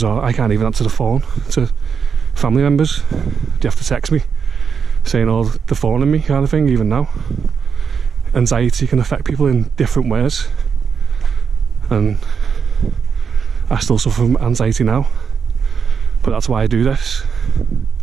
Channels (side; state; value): left; quieter; 6.3 dB